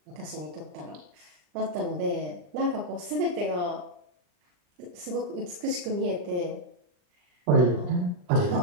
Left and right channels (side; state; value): left; late; 39 ms